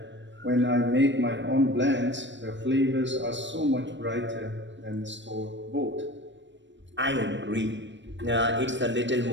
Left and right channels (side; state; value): left; late; 0.53 ms